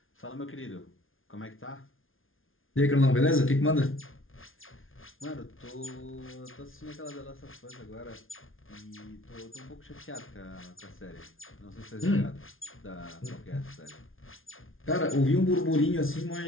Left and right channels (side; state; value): right; late; 0.59 ms